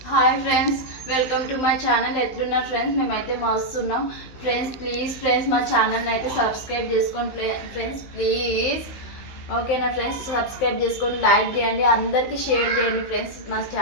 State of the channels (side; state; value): right; late; 15 ms